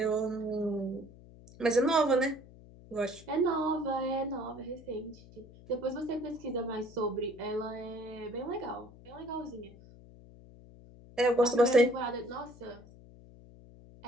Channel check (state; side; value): noise; left; hum, 20 dB below the sound